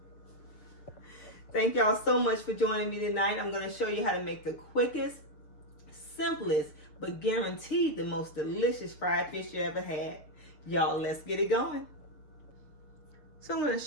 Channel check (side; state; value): right; late; 7.0 ms